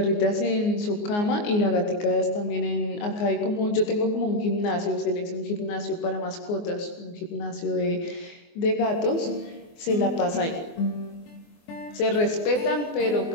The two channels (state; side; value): late; right; 24 ms